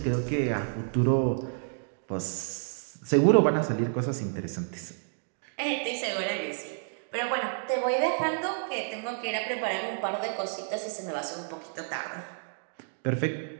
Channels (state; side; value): silent; left; digital silence